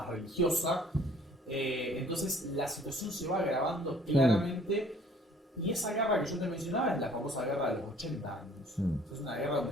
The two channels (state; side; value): normal; both; correlation 0.55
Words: religiosa. Entonces la situación se va agravando claramente, y esa guerra que yo te mencionaba es la famosa guerra de los 80 años. Es una guerra